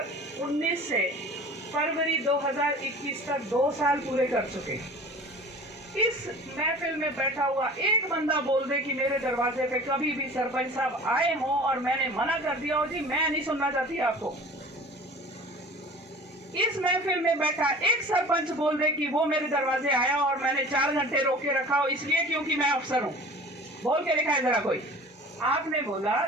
से फरवरी 2021 तक 2 साल पूरे कर चुके। इस महफिल में बैठा हुआ एक बंदा बोल दे कि मेरे दरवाजे पे कभी भी सरपंच साहब आए हों और मैंने मना कर दिया हो, जी मैं नहीं सुनना चाहती आपको। इस महफिल में बैठा एक सरपंच बोल दे कि वो मेरे दरवाजे आया और मैंने 4 घंटे रोक के रखा हो इसलिए क्योंकि मैं अफसर हूं, बोल के दिखाए जरा कोई। आपने बोला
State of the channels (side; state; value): both; normal; correlation 0.42